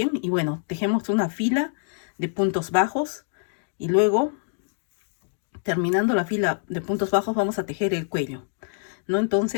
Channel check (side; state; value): right; silent; digital silence